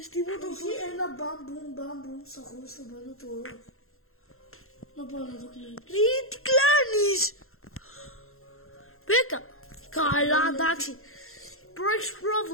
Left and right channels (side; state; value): right; late; 0.62 ms